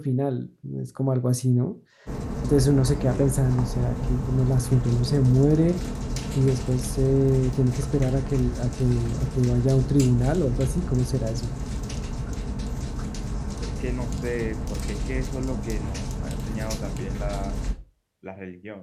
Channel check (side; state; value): both; identical; correlation 1.00